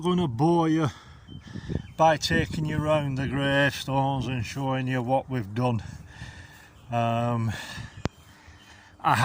going to bore you by taking you around the gravestones and showing you what we've done. I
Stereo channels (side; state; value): both; identical; correlation 1.00